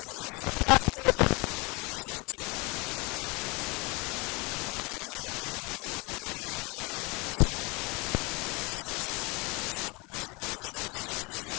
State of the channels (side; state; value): right; quieter; 27.5 dB